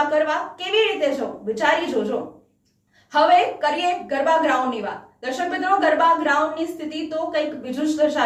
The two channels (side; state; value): both; identical; correlation 1.00